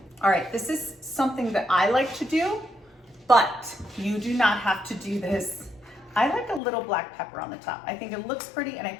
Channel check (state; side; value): drops out; right; at 6.6 s